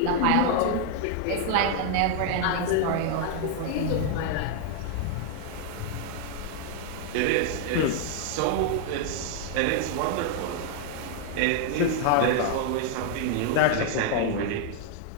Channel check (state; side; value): different; both; correlation 0.00